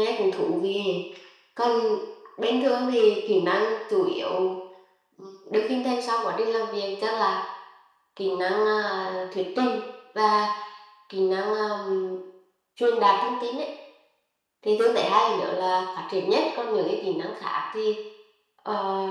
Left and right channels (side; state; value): both; identical; correlation 1.00